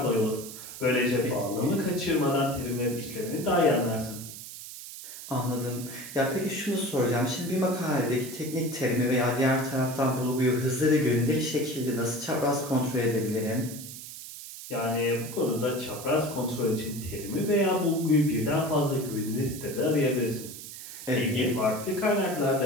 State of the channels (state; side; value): noise; right; hiss, 12 dB below the sound